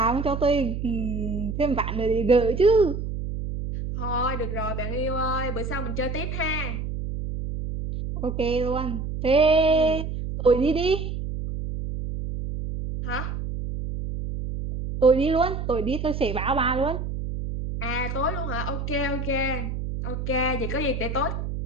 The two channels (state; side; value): noise; right; hum, 4 dB below the sound